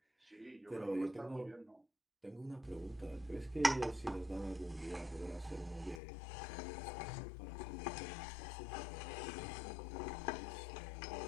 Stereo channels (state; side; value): drops out; right; at 6.0 s